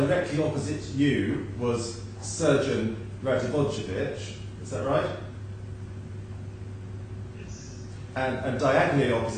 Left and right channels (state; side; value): identical; both; correlation 1.00